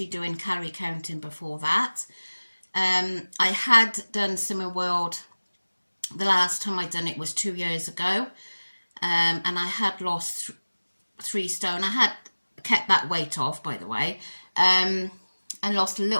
doing calorie counting before that. I had done Slimming World, the last time I'd done it was 2 years ago. And I had lost 3 stone. I had kept that weight off, by the way, and lost a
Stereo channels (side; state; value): both; inverted; correlation -1.00